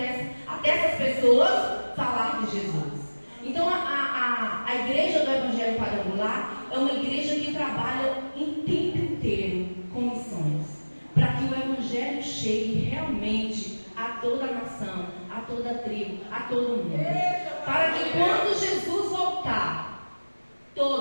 essas pessoas falar de Jesus. Então a igreja do Evangelho Quadrangular é uma igreja que trabalha em tempo inteiro com missões, para que o Evangelho chegue realmente a toda a nação, a toda a tribo, a todo mundo. Para que quando Jesus voltar,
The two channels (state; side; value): inverted; both; correlation -1.00